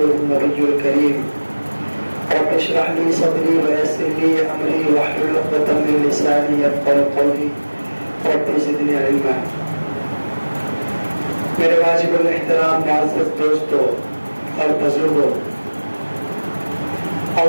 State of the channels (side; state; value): both; inverted; correlation -1.00